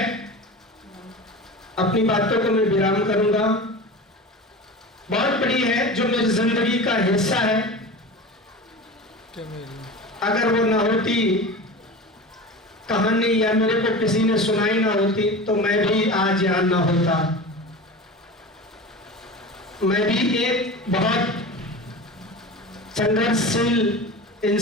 अपनी बातों को मैं विराम करूंगा। बहुत बड़ी है, जो मेरी जिंदगी का हिस्सा है। अगर वो ना होती कहानी या मेरे को किसी ने सुनाई ना होती तो मैं भी आज यहाँ ना होता। मैं भी एक बहुत संघर्षशील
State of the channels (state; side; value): normal; both; correlation 0.32